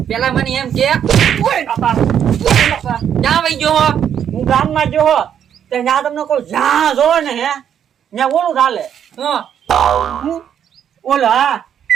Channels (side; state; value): left; quieter; 9.0 dB